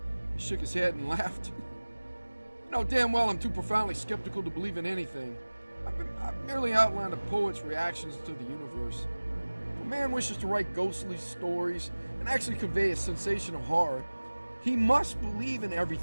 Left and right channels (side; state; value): both; inverted; correlation -1.00